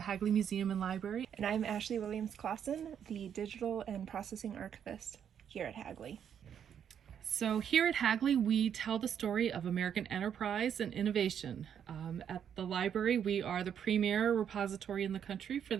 Hagley Museum and Library. And I'm Ashley Williams-Clausen, the Digital and Processing Archivist here at Hagley. So here at Hagley, we tell the story of American enterprise and innovation. At the library, we are the premier repository in the country for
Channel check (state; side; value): quieter; left; 8.6 dB